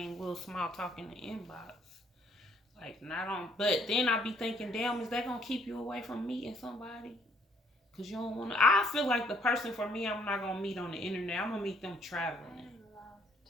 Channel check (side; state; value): both; normal; correlation 0.65